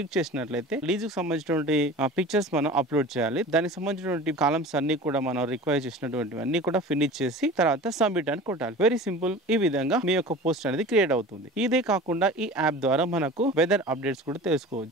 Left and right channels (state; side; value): normal; both; correlation 0.38